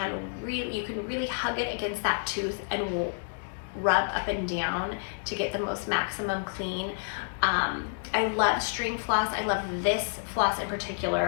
you can really hug it against that tooth and rub up and down to get the most maximum clean. I love string floss. I love this floss in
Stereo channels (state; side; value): silent; right; digital silence